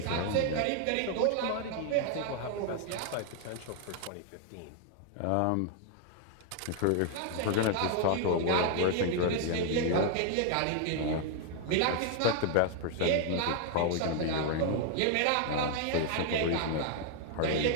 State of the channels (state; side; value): different; both; correlation 0.00